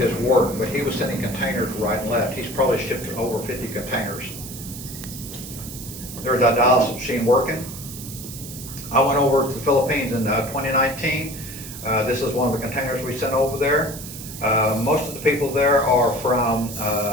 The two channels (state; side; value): noise; right; hiss, 12 dB below the sound